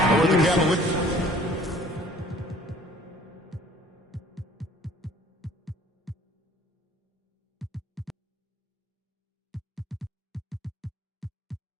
Or the Cavaliers.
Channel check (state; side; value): normal; both; correlation 0.54